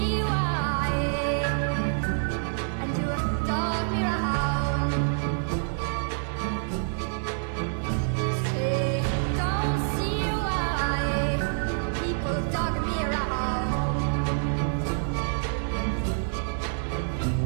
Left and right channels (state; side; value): silent; left; 58 dB below the other